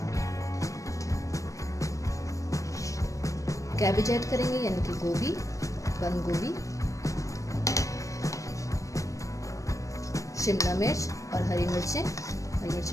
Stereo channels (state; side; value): late; right; 0.16 ms